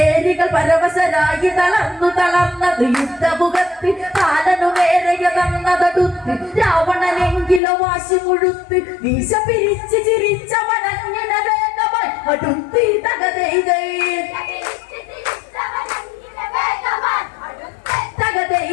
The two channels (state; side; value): drops out; right; at 7.6 s